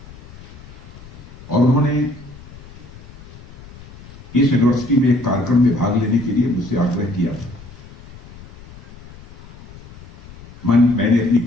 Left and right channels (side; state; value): left; noise; rumble, 18 dB below the sound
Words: और उन्होंने इस यूनिवर्सिटी में एक कार्यक्रम में भाग लेने के लिए मुझसे आग्रह किया था। मैंने अपनी